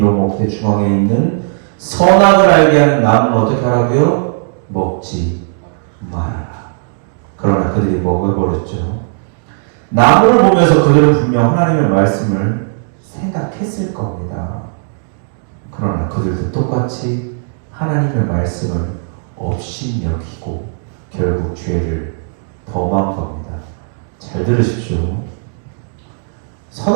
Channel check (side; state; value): left; silent; digital silence